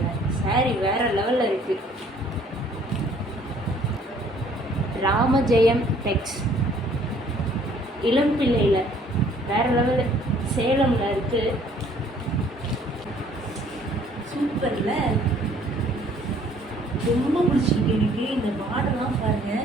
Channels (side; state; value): both; normal; correlation 0.59